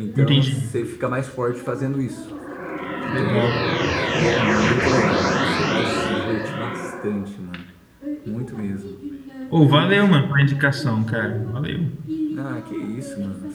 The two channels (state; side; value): identical; both; correlation 1.00